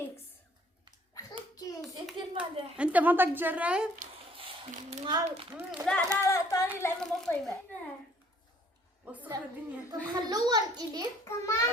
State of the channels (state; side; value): normal; both; correlation 0.59